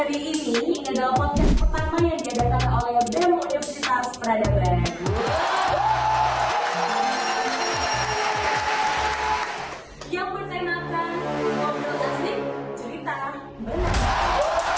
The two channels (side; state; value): both; identical; correlation 1.00